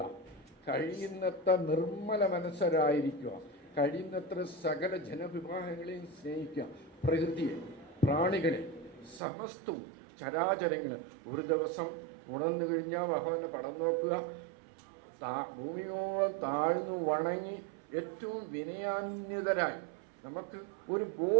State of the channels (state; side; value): drops out; left; at 9.2 s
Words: മനസ്സരായിരിക്കുക, കഴിയുന്നത്ര സകല ജനവിഭാഗങ്ങളെയും സ്നേഹിക്കുക, പ്രകൃതിയെ, പ്രാണികളെ, സമസ്തവും ചരാചരങ്ങളെ. ഒരു ദിവസം ഉണർന്നു കഴിഞ്ഞാൽ ഭഗവാനെ പടം നോക്കുക, ഭൂമിയോളം താഴ്ന്നു വണങ്ങി ഏറ്റവും വിനയാന്വിതരായി നമുക്ക് ഒരു